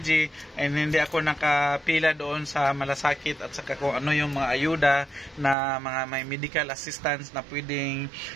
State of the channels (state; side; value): drops out; left; at 5.6 s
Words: and hindi ako nakapila doon sa malasakit at saka kung ano yung mga ayuda na mga may medical assistance na pwedeng